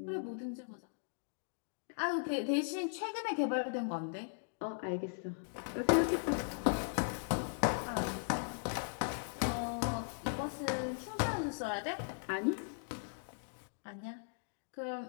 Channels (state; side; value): silent; right; digital silence